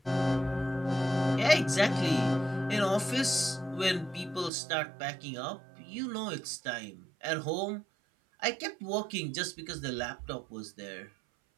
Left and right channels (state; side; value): drops out; left; at 4.5 s